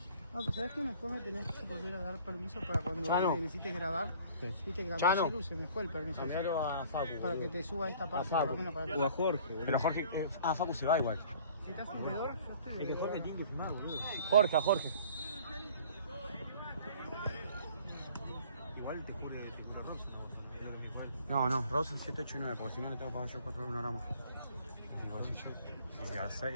No, pero ¿sabes qué? Después me tenés que volver a dar permiso para cuando necesites grabar. Sí. Viste que cambié el celu, se me fue el permiso. A Facu. Para que te suba esta parte, por lo menos para O a Jorge, boludo. Pero Jorge. Facu se va igual. Si estás alrededor, yo estoy. Es que Jorge tiene que filmar, boludo. Jorge. Igual te jure Ross. No, Ross es 7, 8 y 9, porque si no le tengo que pagar yo 4 euros, 1 gramo. Digo, así yo. Si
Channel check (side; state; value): both; inverted; correlation -0.52